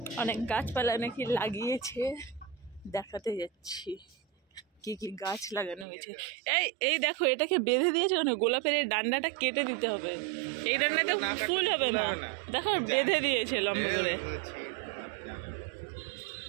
অনেক গাছপালা নাকি লাগিয়েছে, দেখাতে যাচ্ছি কি কি গাছ লাগানো হয়েছে। এই এই দেখো, এটাকে বেঁধে দিয়েছে কেন? গোলাপের এই ডান্ডাটা কেটে দিতে হবে, এই ডান্ডাতে ফুল হবে না। দেখো বেঁধে দিয়েছে লম্বা করে,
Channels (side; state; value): left; drops out; at 5.9 s